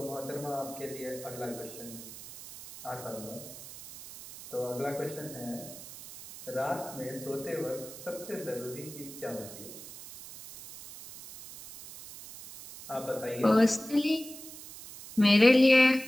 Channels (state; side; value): noise; right; hiss, 14 dB below the sound